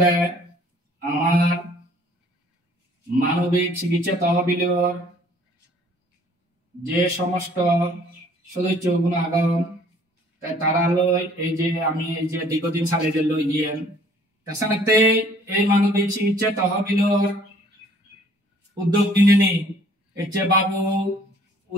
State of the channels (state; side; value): normal; both; correlation 0.57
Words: আমার মানবিক চিকিৎসা তহবিলের যে সমস্ত সদস্যগুলো আগাম তারা লই এই যে আমি এই যে দীর্ঘদিন সালে যে লই গিয়েন তাছাড়াতে এই মানবিক চিকিৎসা তহবিলের উদ্যোগ নিয়ে নি এই যে বাবু